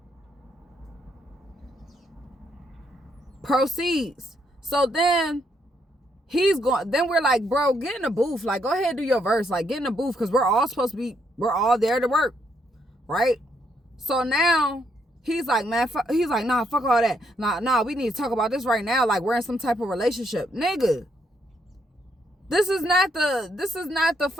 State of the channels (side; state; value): both; normal; correlation 0.74